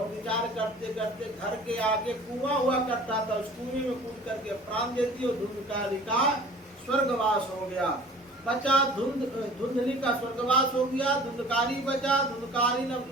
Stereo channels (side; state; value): both; normal; correlation 0.46